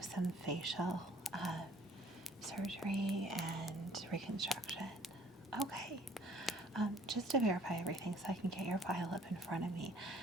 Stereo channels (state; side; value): normal; both; correlation 0.57